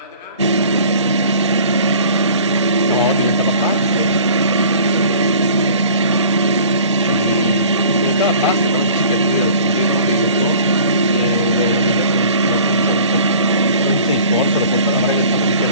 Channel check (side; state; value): both; inverted; correlation -0.47